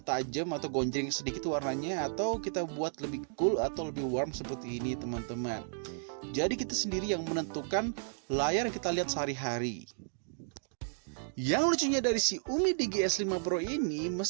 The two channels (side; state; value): left; silent; digital silence